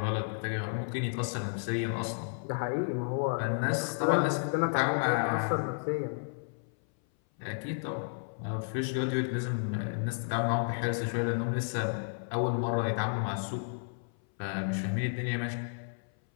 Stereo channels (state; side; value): silent; right; 56 dB below the other